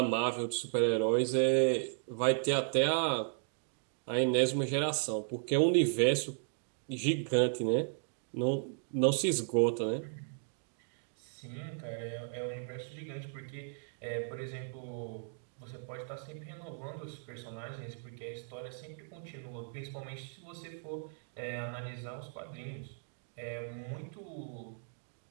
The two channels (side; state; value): left; silent; digital silence